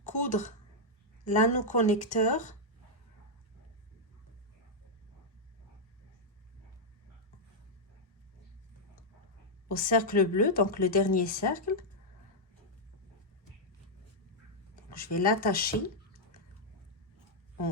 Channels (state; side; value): normal; both; correlation -0.05